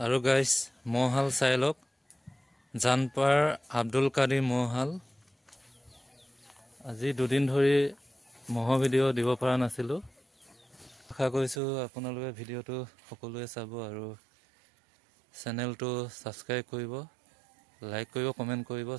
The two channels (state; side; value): drops out; left; at 11.6 s